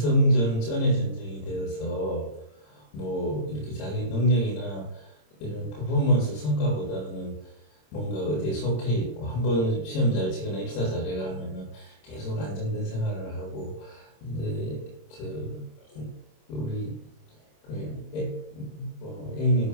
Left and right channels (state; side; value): late; right; 26 ms